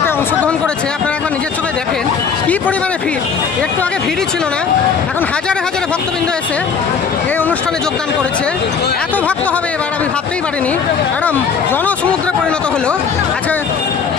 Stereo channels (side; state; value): right; quieter; 6.1 dB